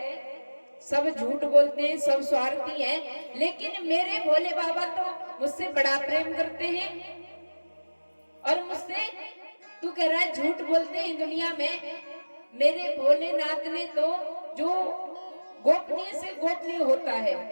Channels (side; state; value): both; inverted; correlation -1.00